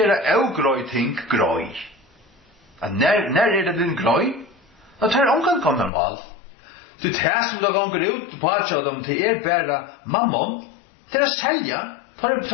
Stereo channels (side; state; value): right; drops out; at 5.9 s